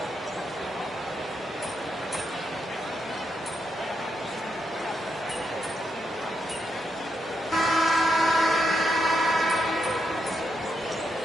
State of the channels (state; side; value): normal; both; correlation 0.81